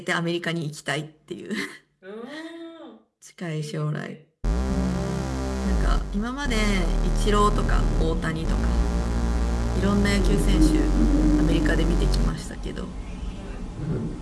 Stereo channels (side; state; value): both; identical; correlation 1.00